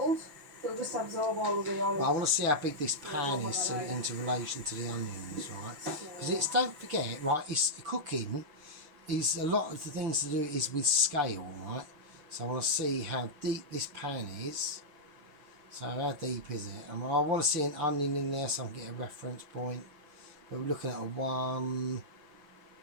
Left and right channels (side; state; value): left; late; 6.8 ms